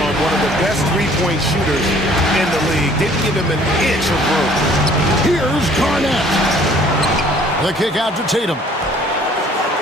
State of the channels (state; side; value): normal; both; correlation 0.56